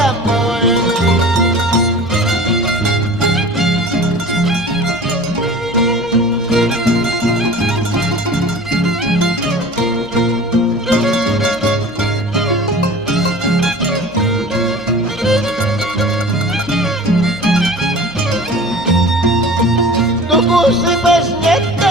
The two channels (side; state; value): left; noise; hum, 23 dB below the sound